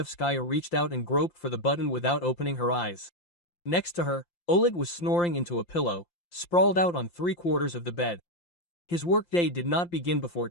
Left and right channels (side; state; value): right; late; 5.8 ms